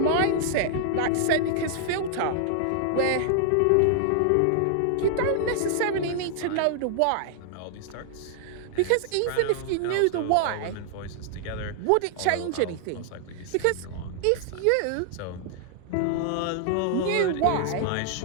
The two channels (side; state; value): both; different; correlation -0.01